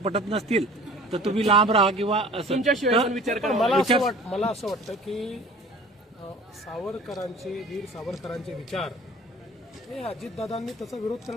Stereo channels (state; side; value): normal; both; correlation 0.46